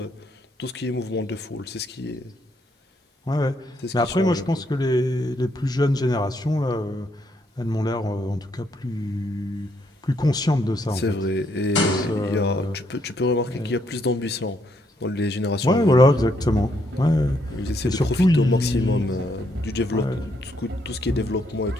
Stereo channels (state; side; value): normal; both; correlation 0.74